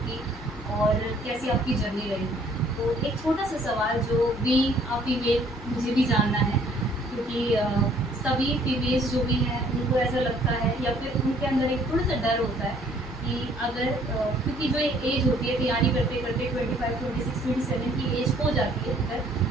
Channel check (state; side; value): normal; both; correlation 0.60